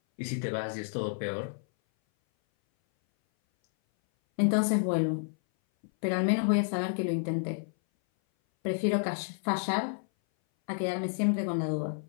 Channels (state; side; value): silent; right; 58 dB below the other